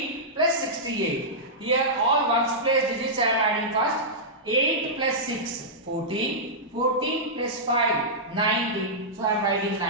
plus 68. Here all ones place digits I am adding first. 8 plus 6 14. 14 plus 5 19. So I am writing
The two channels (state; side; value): normal; both; correlation -0.12